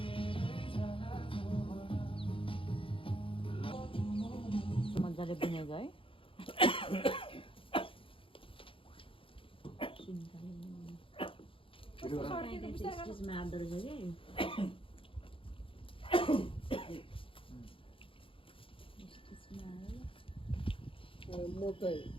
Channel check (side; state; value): right; late; 0.26 ms